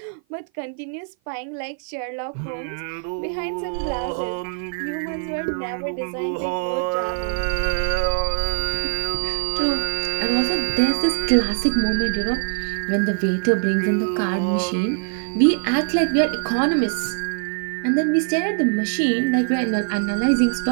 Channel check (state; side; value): silent; left; 55 dB below the other